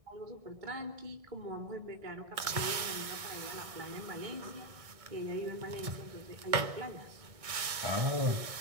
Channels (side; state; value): left; late; 1.6 ms